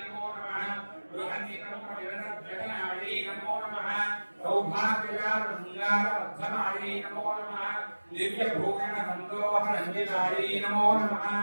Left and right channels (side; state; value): both; inverted; correlation -1.00